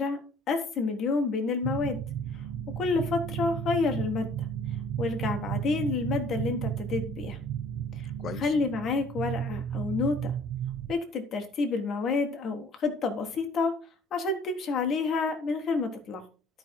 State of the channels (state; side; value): normal; both; correlation 0.54